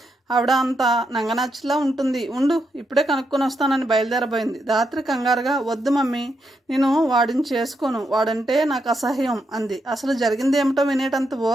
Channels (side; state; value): both; normal; correlation 0.82